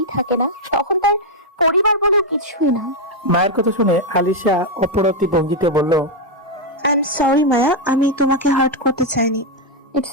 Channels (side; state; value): both; normal; correlation 0.01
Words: থাকে না, তখন তার পরিবার বলে কিছুই না। মায়ের কথা শুনে আলিশা অপরতি ভঙ্গিতে বলল, আই এম সরি মায়া, আমি তোমাকে হার্ট করতে চাইনি। ইটস